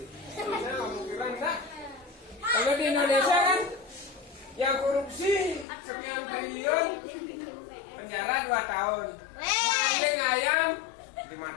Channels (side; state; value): right; drops out; at 5.7 s